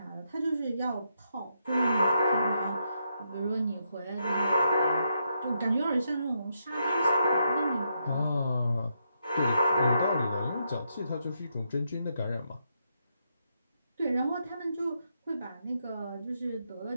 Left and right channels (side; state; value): both; inverted; correlation -0.80